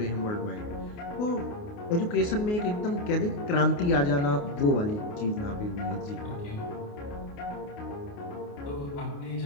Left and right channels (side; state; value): right; late; 28 ms